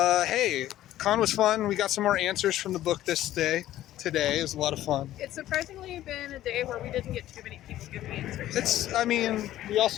Hey, con was fun. We got some more answers from the book today. It was a lot of fun. It's surprisingly been a day where we didn't get too many people giving answers. We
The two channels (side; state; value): right; quieter; 13.7 dB